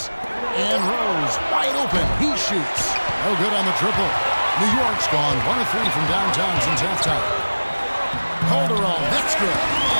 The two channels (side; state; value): both; inverted; correlation -1.00